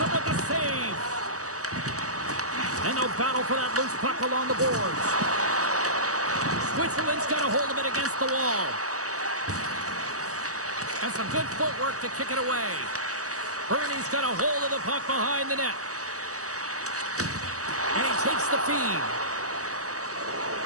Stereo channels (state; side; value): late; left; 0.66 ms